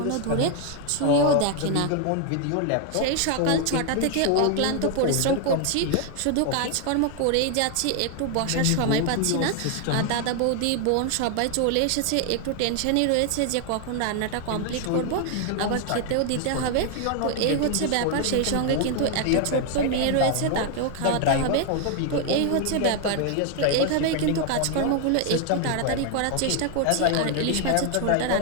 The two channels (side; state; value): both; different; correlation 0.00